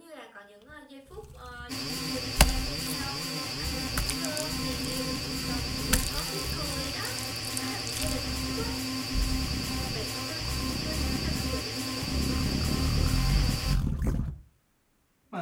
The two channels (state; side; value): identical; both; correlation 1.00